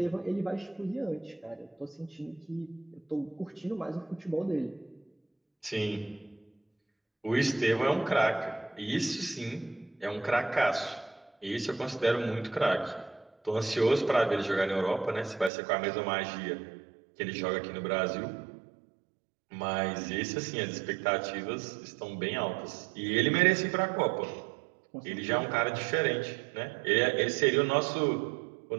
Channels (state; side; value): drops out; left; at 15.5 s